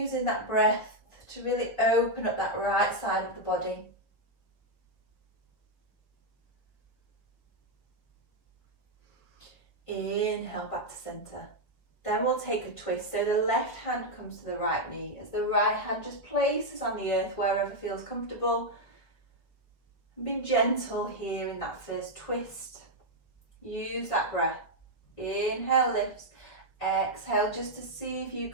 that breath to really open up that right side of the body. Inhale back to centre. Then we'll take a twist. So the left hand comes to the right knee as the right hand just places on the earth wherever feels comfortable. And be gentle here in that first twist. Use that breath. Inhale lifts. Exhale just to see if you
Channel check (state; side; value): late; right; 1.8 ms